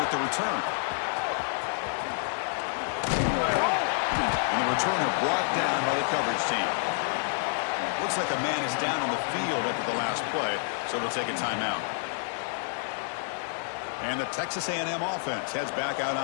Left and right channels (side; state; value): right; silent; digital silence